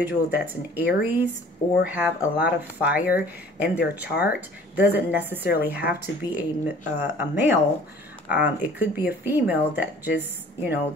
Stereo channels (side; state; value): both; normal; correlation 0.50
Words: that's an Aries or have a lot of fire in their chart. Doesn't necessarily have to be a male. It could be a female that just, you know,